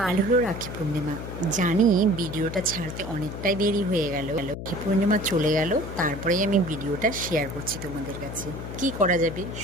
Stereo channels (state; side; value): noise; left; hum, 8 dB below the sound